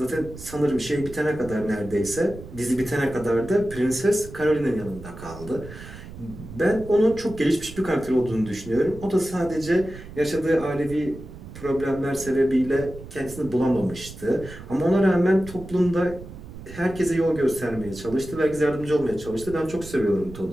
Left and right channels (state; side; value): noise; right; rumble, 14 dB below the sound